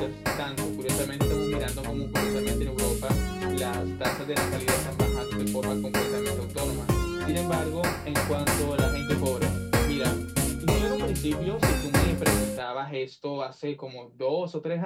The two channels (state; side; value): identical; both; correlation 1.00